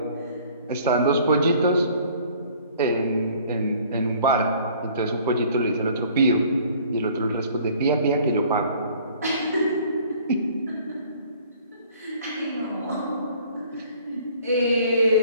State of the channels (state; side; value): inverted; both; correlation -0.54